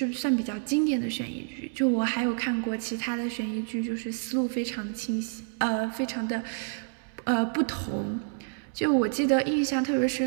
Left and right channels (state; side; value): silent; left; 59 dB below the other